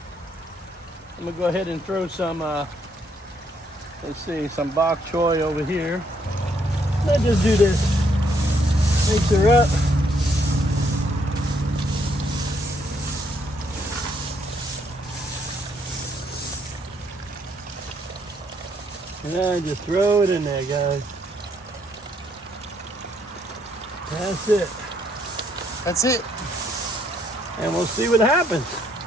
I'm gonna go ahead and throw some, some bok choy over here. Let's just do this. Mix her up. And then just throw it in there, guys. That's it. That's it. And we'll see what happens.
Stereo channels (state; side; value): normal; both; correlation 0.71